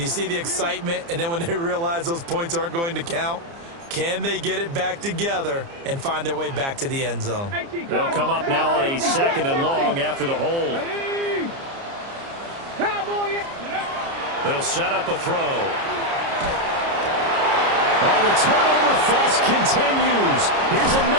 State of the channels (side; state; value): left; late; 29 ms